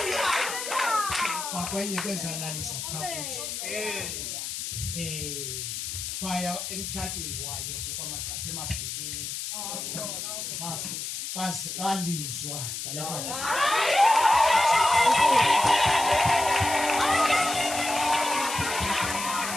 kwakwenye kwezalalisa phakathi baya emtshatweni wayo ke kwamaqasha emabheleni balizwa ngalapha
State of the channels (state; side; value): noise; left; hiss, 5 dB below the sound